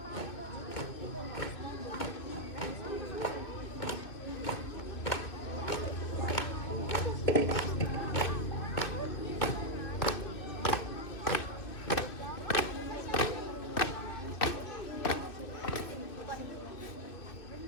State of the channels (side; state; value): right; late; 2.6 ms